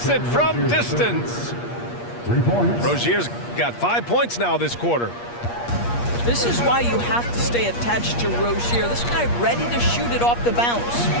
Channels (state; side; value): late; right; 8.5 ms